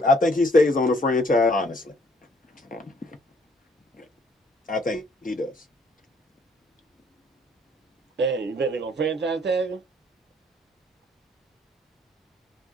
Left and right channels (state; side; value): normal; both; correlation 0.63